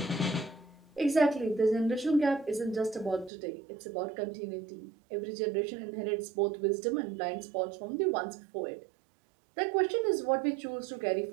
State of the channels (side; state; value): left; drops out; at 3.3 s